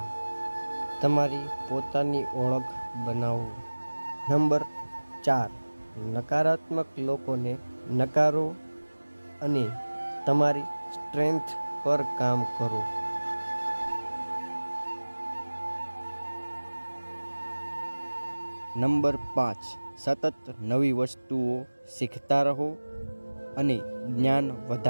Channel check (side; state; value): both; inverted; correlation -1.00